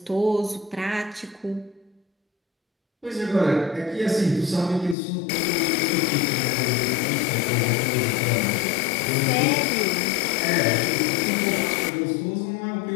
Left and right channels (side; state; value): right; drops out; at 5.0 s